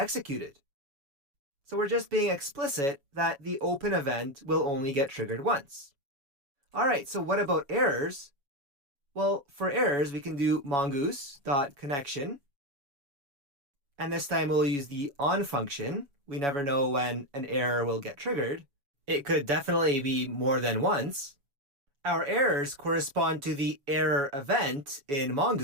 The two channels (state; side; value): late; left; 7.1 ms